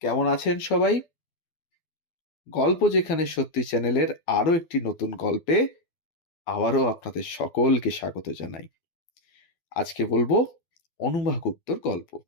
কেমন আছেন সবাই? গল্প যেখানে সত্যি চ্যানেলের আরো একটি নতুন গল্পে আবারও আপনাদের সকলকে স্বাগত জানাই। আজকে বলবো অনুভা গুপ্তর গল্প।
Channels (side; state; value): right; late; 12 ms